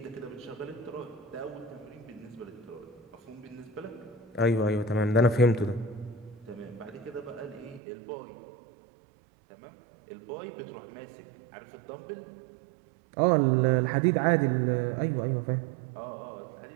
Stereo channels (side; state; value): left; drops out; at 7.8 s